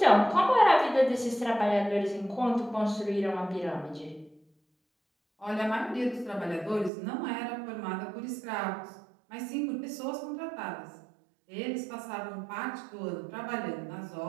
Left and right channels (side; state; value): left; drops out; at 6.9 s